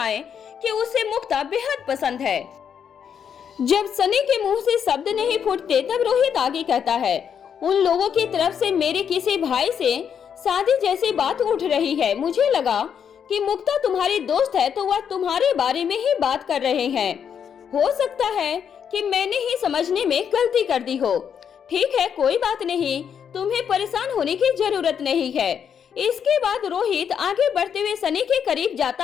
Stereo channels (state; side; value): quieter; right; 7.8 dB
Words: कि उसे मुक्ता बेहद पसंद है। जब सनी के मुंह से शब्द नहीं फूटते, तब रोहित आगे कहता है, उन लोगों की तरफ से मेरे किसी भाई से शादी जैसी बात उठ रही है। मुझे लगा कि मुक्ता तुम्हारी दोस्त है, तो वह तुम्हारे बारे में ही बात कर रहे हैं। हो सकता है कि मैंने ही समझने में गलती कर दी हो। ठीक है, कोई बात नहीं, तुम्हें परेशान होने की जरूरत नहीं है। इसके बाद रोहित आगे बढ़ते हुए सनी के करीब